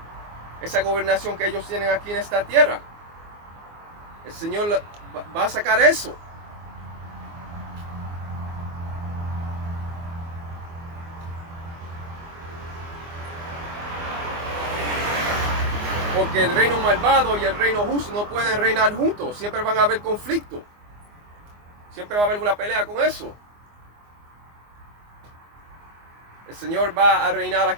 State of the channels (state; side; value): late; left; 24 ms